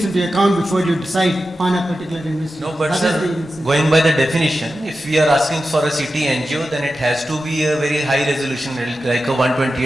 into account before you decide on a particular investigation. No, but That sir, is the- going by the definition, if we are asking for a CT angio, then it has to be a very high resolution, like a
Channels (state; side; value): normal; both; correlation 0.92